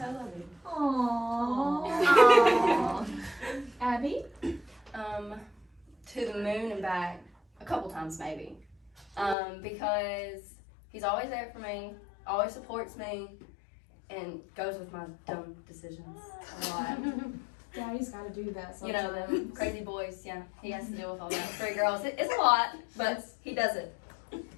loving. Aww. times maybe. Because he's always there for me, always supports me, and goes with my dumb decisions a lot. Daddy's got to do that You sometimes. know, the crazy boys, yeah. He has to deal with all that. 3 girls, it's a lot, but he does it.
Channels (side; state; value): right; drops out; at 9.3 s